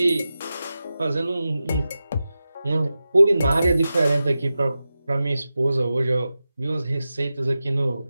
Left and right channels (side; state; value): both; inverted; correlation -0.93